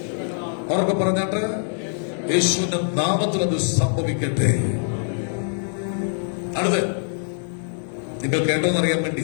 പറഞ്ഞാട്ട് യേശുവിന്റെ നാമത്തിൽ അത് സംഭവിക്കട്ടെ. അടുത്ത് നിങ്ങൾ കേട്ടോന്നറിയാൻ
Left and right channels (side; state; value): right; silent; 63 dB below the other